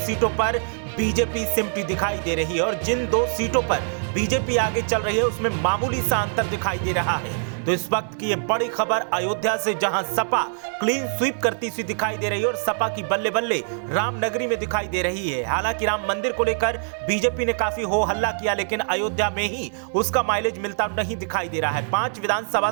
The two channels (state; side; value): silent; left; 63 dB below the other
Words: सीटों पर बीजेपी सिमटी दिखाई दे रही है। और जिन 2 सीटों पर बीजेपी आगे चल रही है उसमें मामूली सा अंतर दिखाई दे रहा है। तो इस वक्त की ये बड़ी खबर अयोध्या से, जहां सपा क्लीन स्वीप करती सी दिखाई दे रही है और सपा की बल्ले बल्ले रामनगरी में दिखाई दे रही है। हालांकि राम मंदिर को लेकर बीजेपी ने काफी हो हल्ला किया, लेकिन अयोध्या में ही उसका माइलेज मिलता नहीं दिखाई दे रहा है। 5 विधानसभा